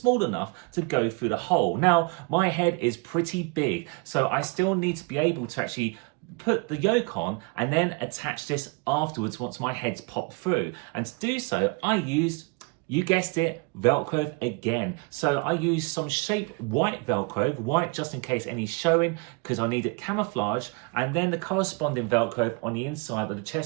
enough to go through the hole. Now my head is pretty big, so I still need to be able to actually put the Yolk on and then attach this afterwards once my head's popped through. And to do so, I used, you guessed it, Velcro again. So I used some shaped white Velcro, white just in case any's showing, because I need it camouflage, and then the corresponding Velcro on the inside of the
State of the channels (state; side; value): quieter; left; 29.2 dB